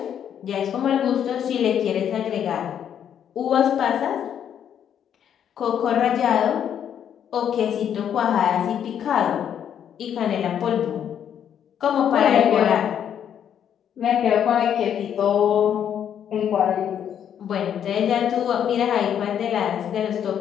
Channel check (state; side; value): quieter; right; 9.1 dB